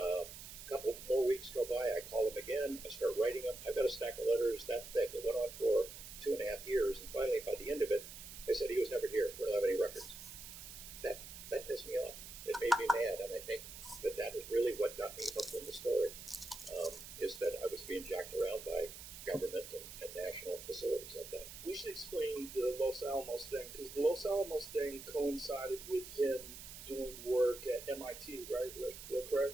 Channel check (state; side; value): noise; right; hiss, 12 dB below the sound